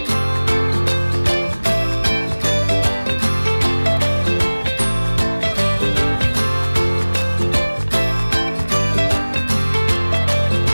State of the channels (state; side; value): inverted; both; correlation -1.00